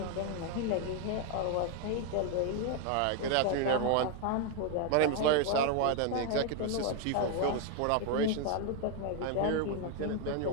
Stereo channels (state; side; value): different; both; correlation 0.01